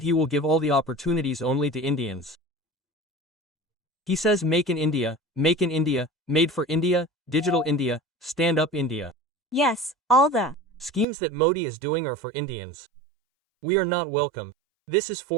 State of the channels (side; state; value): left; drops out; at 11.1 s